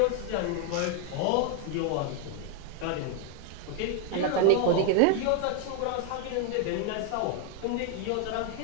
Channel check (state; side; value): different; both; correlation 0.01